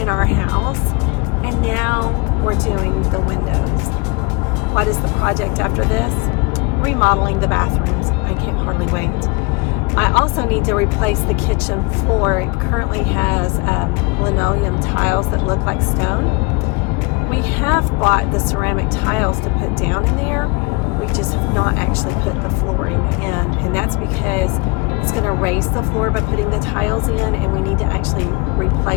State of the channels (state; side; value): quieter; right; 27.8 dB